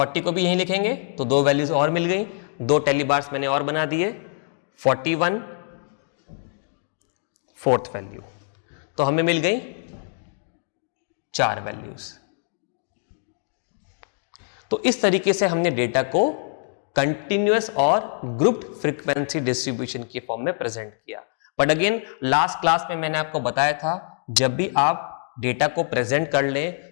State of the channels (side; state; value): right; silent; digital silence